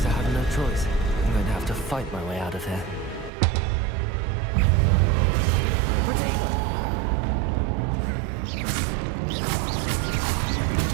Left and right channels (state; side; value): drops out; left; at 3.3 s